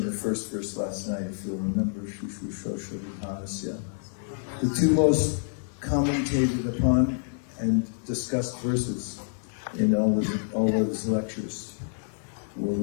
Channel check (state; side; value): silent; right; digital silence